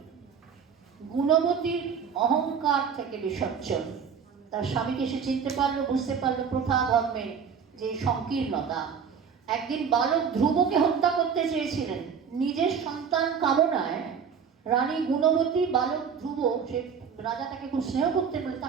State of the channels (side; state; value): left; quieter; 6.7 dB